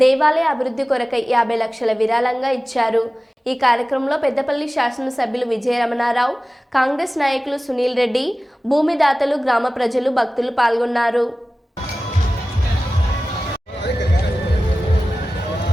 దేవాలయ అభివృద్ధి కొరకై 50 లక్షల విరాళంగా ఇచ్చారు. ఈ కార్యక్రమంలో పెద్దపల్లి శాసనసభ్యులు విజయరమణారావు, కాంగ్రెస్ నాయకులు సునీల్ రెడ్డి, భూమిదాతలు, గ్రామ ప్రజలు, భక్తులు పాల్గొన్నారు.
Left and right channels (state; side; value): normal; both; correlation 0.96